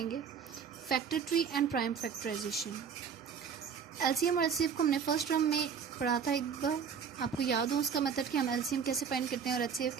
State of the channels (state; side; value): quieter; left; 6.8 dB